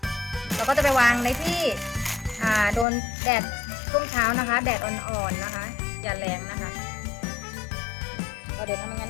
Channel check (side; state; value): right; drops out; at 2.9 s